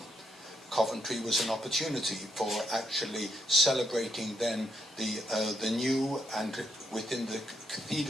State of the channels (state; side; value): normal; both; correlation 0.77